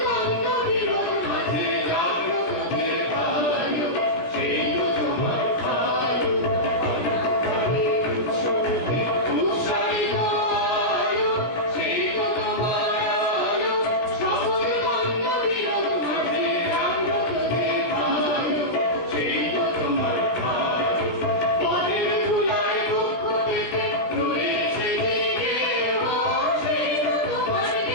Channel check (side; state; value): right; late; 17 ms